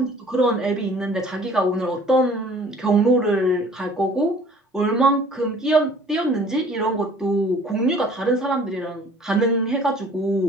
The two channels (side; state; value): both; normal; correlation 0.52